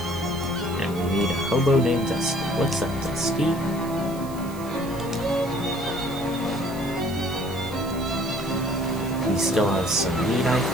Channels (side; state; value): right; noise; hiss, 18 dB below the sound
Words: And we meet a hobo named Dusty. What's up, Dusty? We still have some meat, I